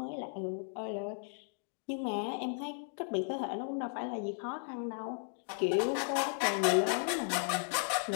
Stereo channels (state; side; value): silent; right; 54 dB below the other